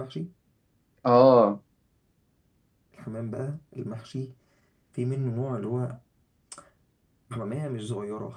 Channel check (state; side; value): identical; both; correlation 1.00